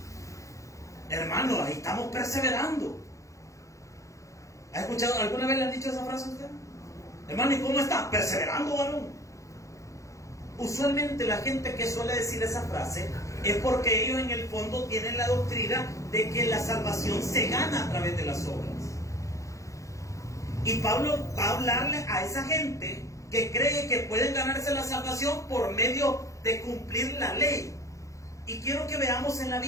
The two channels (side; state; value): right; late; 0.15 ms